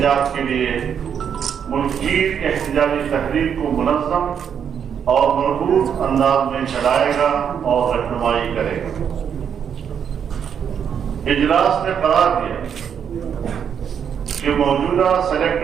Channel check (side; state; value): left; quieter; 7.9 dB